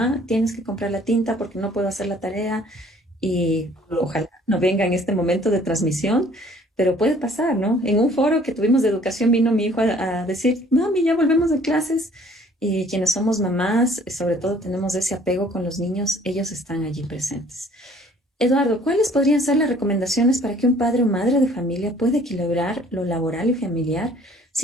tienes que comprar la tinta porque no puedo hacer la tarea y ojalá no venga en este momento de transmisión, pero puede pasar, ¿no? En un foro que tuvimos de educación vino mi hijo a decir, mami, ya volvemos de clases y quienes somos mamás, sobre todo tenemos ese apego con los niños, ellos están allí presentes. Eduardo, ¿cuáles podrían ser las recomendaciones para que un padre o madre de familia pueda equilibrar lo laboral y familiar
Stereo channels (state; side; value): normal; both; correlation 0.56